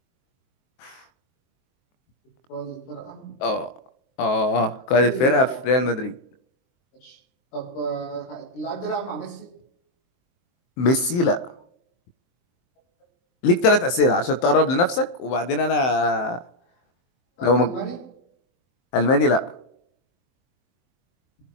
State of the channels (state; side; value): late; right; 23 ms